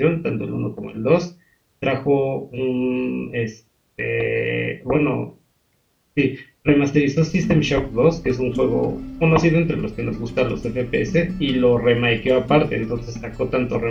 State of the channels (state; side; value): identical; both; correlation 1.00